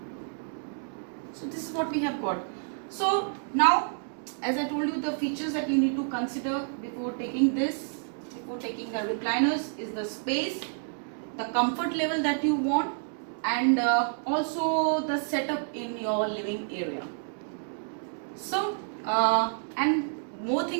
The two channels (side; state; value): left; silent; digital silence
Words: So this is what we have got. So now, as I told you, the features that you need to consider before taking the recliners is the space, the comfort level that you want, and also the setup in your living area. So and more